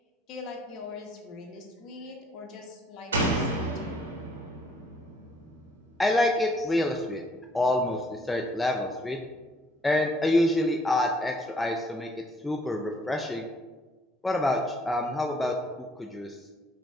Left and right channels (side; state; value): both; normal; correlation 0.63